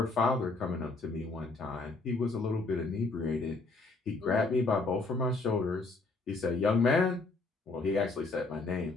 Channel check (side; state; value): right; quieter; 3.6 dB